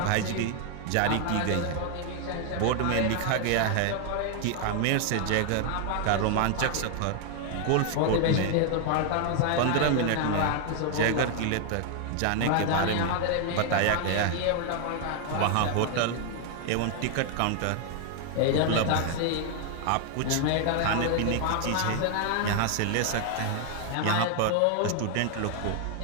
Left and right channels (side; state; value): both; different; correlation 0.00